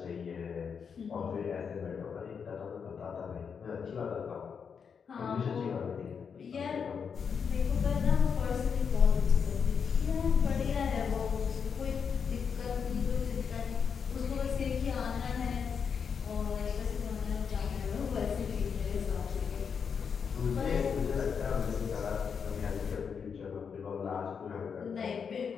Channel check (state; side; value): quieter; right; 6.5 dB